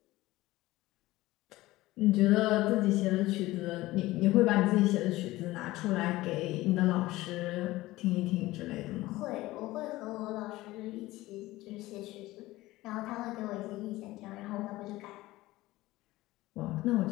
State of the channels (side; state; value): right; quieter; 18.0 dB